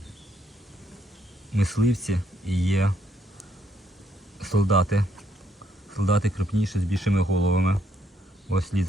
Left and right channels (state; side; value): normal; both; correlation 0.72